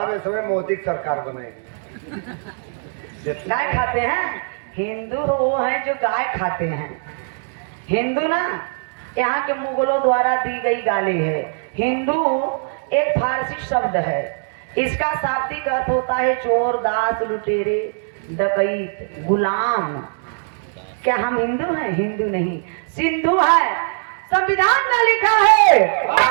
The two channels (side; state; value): left; silent; 65 dB below the other